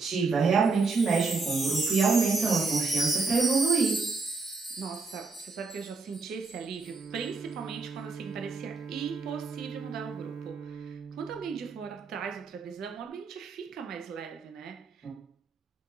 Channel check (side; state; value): left; quieter; 4.2 dB